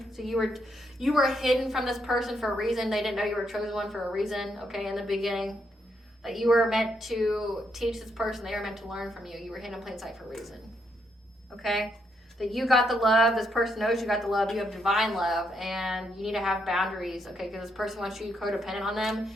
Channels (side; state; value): both; normal; correlation 0.77